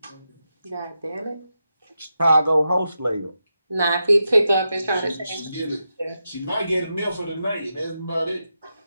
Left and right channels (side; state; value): both; inverted; correlation -0.88